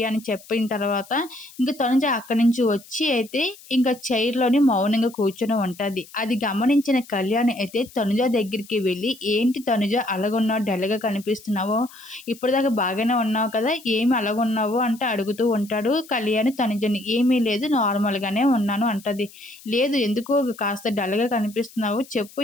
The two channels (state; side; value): noise; left; hiss, 22 dB below the sound